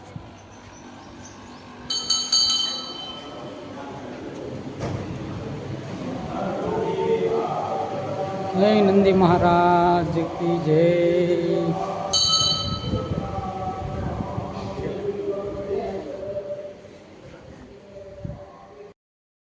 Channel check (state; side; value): identical; both; correlation 1.00